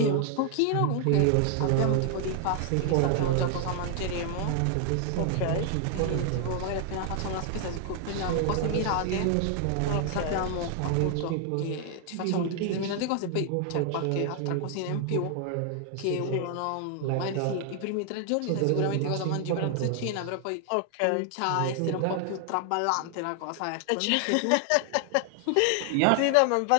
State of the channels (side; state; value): both; different; correlation 0.00